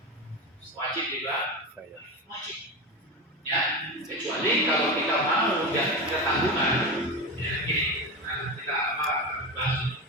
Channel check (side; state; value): both; normal; correlation 0.21